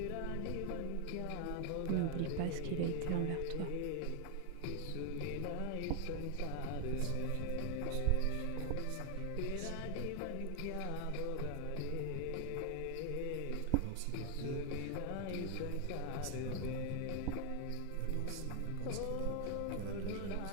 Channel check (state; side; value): different; both; correlation 0.00